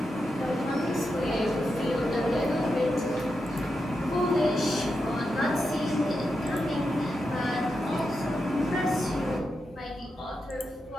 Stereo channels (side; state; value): both; normal; correlation 0.87